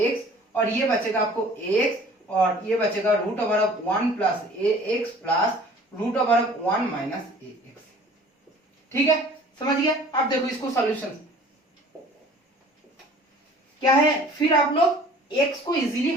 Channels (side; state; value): both; normal; correlation 0.49